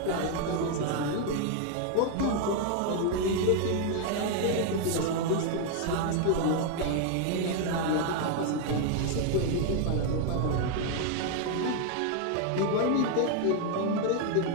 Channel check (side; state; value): both; different; correlation 0.00